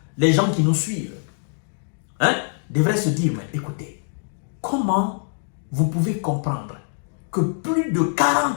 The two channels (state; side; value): silent; right; digital silence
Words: les gens qui nous suivent, devraient se dire, mais écoutez, comment vous pouvez comprendre que plus de